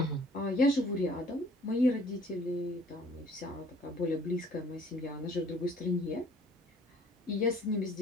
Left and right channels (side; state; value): both; normal; correlation 0.55